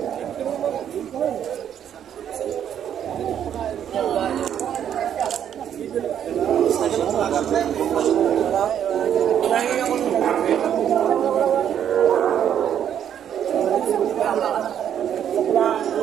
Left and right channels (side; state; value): left; quieter; 9.5 dB